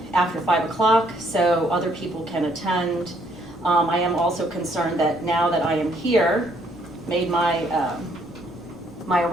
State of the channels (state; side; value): noise; right; rumble, 27 dB below the sound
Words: after 5 o'clock so other people can attend. I am also concerned that now that I am here, made my